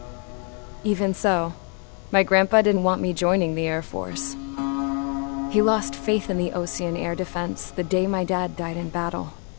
Even so, my grandpa didn't want me joining the Air Force. He lost faith in the Osean air defense the day my dad died in battle.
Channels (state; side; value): quieter; right; 39.6 dB